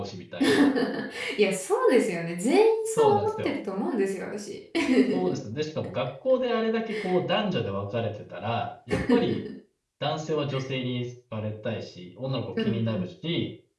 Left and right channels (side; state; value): both; identical; correlation 1.00